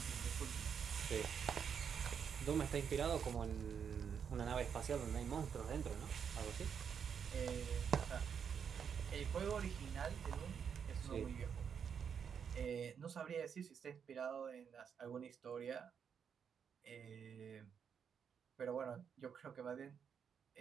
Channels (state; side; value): quieter; left; 7.3 dB